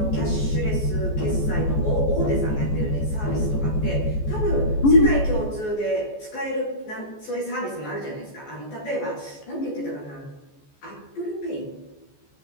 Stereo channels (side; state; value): right; late; 14 ms